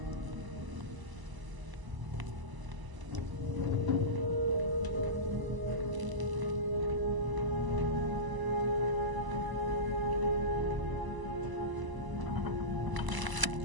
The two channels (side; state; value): left; late; 1.0 ms